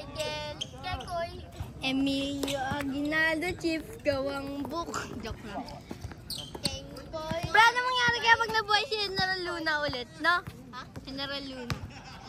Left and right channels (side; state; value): both; identical; correlation 1.00